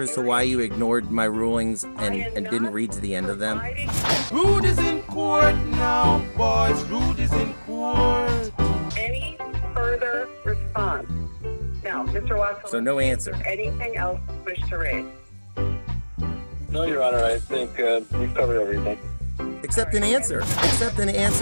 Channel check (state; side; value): inverted; both; correlation -1.00